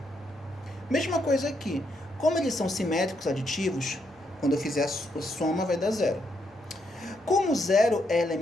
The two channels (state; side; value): normal; both; correlation 0.77